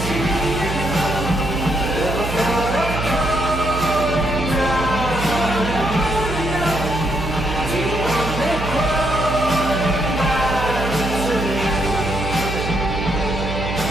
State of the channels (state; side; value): noise; right; hum, 5 dB below the sound